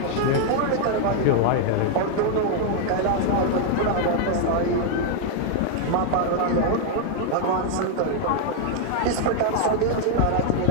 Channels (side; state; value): both; different; correlation 0.00